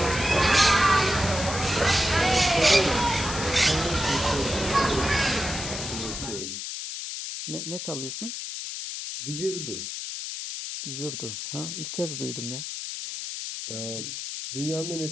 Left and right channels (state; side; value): noise; left; hiss, 6 dB below the sound